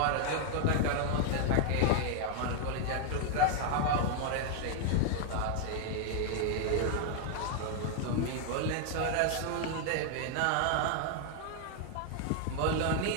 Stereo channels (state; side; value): different; both; correlation 0.00